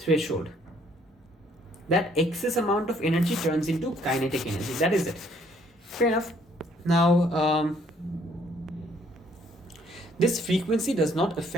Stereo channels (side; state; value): both; normal; correlation 0.64